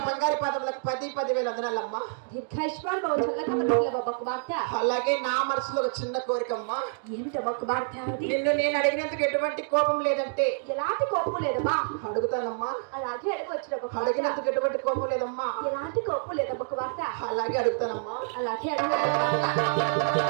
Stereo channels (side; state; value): left; silent; digital silence